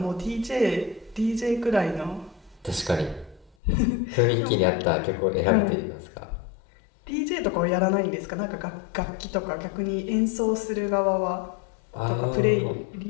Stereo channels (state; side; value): drops out; right; at 3.6 s